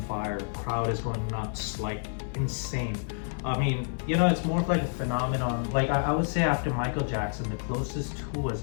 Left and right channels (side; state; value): right; silent; digital silence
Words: fire, crowd is going nuts, like insane. I mean, you know, it's more of like a phenomenon. Like I would say after Michael Jackson, the closest, who was